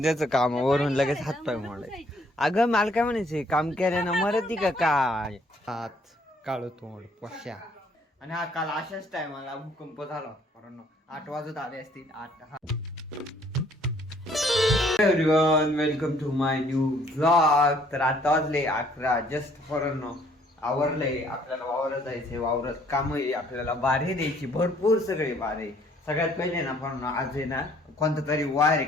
त्याचं कामावरून लगेच हातपाय मोडाय. अगं मला काय म्हणायचंय, काम केल्यानं मरती का काय? हात काळो तोंड पश्या. आणि हा काल अशाच टायमाला भूकंप झाला. कारण 8 वाजत आले असतील 8. Everyone welcome to my new vlog. तर आता वाजले 11 जस्ट फॉरनो आवरलंय. आपल्याला वावरात जायचंय, वावरात काम आहे, आपल्याला बारे द्यायची भरपूर सगळे बारे. सगळ्यात पहिले ना पण आज आहे ना कोणता तरी वार आहे,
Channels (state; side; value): normal; both; correlation 0.62